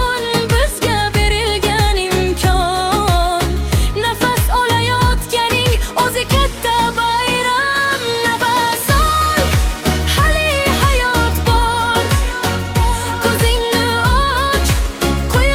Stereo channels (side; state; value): both; identical; correlation 1.00